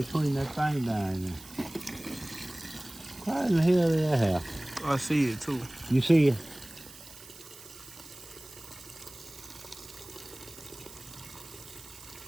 that thing down there. Why in the hell did that happen? I see it too. You see it?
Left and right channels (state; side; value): noise; right; hiss, 18 dB below the sound